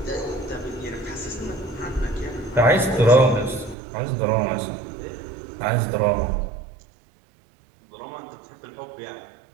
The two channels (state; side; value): drops out; left; at 3.8 s